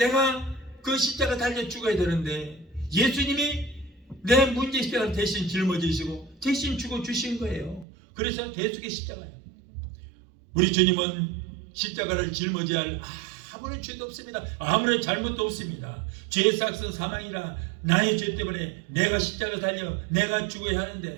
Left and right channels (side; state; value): left; drops out; at 7.9 s